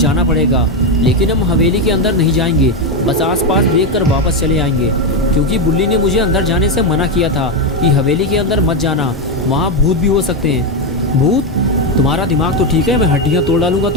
पड़ेगा। लेकिन हम हवेली के अंदर नहीं जाएंगे, बस आसपास देख कर वापस चले आएंगे, क्योंकि बुल्ली ने मुझे अंदर जाने से मना किया था कि हवेली के अंदर मत जाना, वहाँ भूत भी हो सकते हैं। भूत? तुम्हारा दिमाग तो ठीक है, मैं हड्डियाँ तोड़ डालूंगा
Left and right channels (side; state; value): both; normal; correlation 0.08